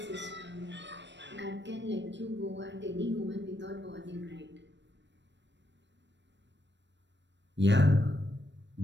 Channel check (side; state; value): left; late; 0.52 ms